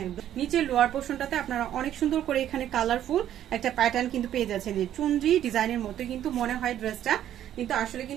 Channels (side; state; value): left; quieter; 11.3 dB